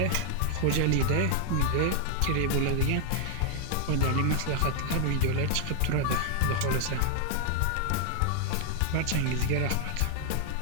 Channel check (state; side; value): different; both; correlation 0.00